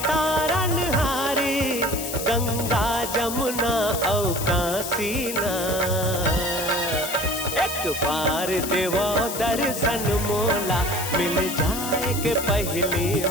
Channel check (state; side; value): noise; left; hiss, 6 dB below the sound